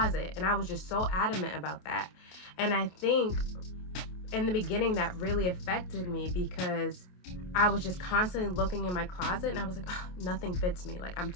And I was just so adamant about that. And I think in the beginning that really affected me, because I was just constantly looking in my closet and I was like, oh, nothing fits me. Like, I'm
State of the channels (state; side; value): late; right; 28 ms